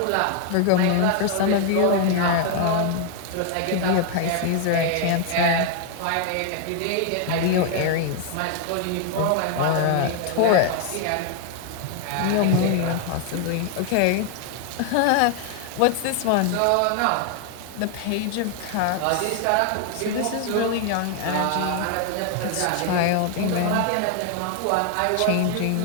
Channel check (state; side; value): different; both; correlation 0.00